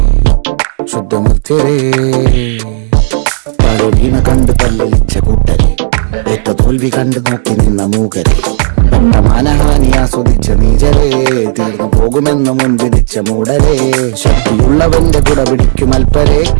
ശുദ്ധമർത്യരേ പലവീണ കണ്ട് പല്ലലിച്ച കൂട്ടരെ ഏറ്റ തോൽവി കണ്ട് നോക്കി നിന്ന മൂകരെ പെട്ട മാനഹാനി ആസ്വദിച്ച നീചരേ തീർന്നു പോകുമെന്ന് മുൻവിധിച്ച മൂടരേ ശക്തിയുള്ളവന്റെ കുട പിടിക്കും അൽപ്പരെ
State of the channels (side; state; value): left; silent; digital silence